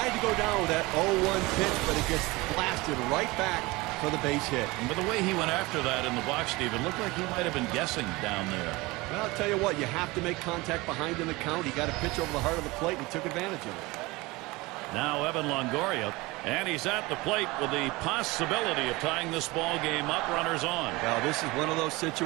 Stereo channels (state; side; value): quieter; left; 22.4 dB